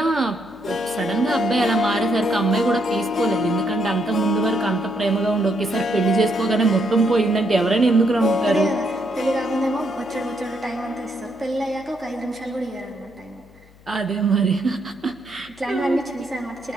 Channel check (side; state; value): left; noise; hum, 26 dB below the sound